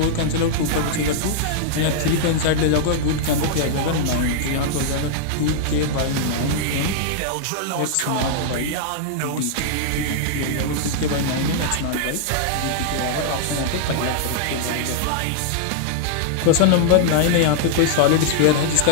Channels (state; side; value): different; both; correlation -0.01